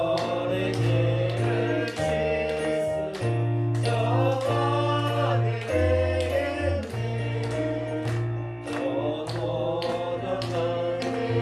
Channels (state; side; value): identical; both; correlation 1.00